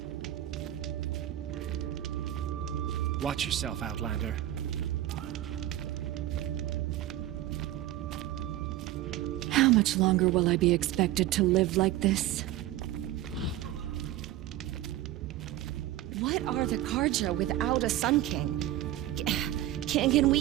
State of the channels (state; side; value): quieter; left; 14.1 dB